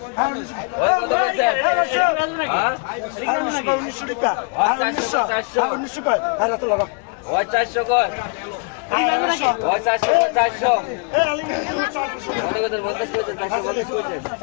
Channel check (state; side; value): quieter; right; 36.9 dB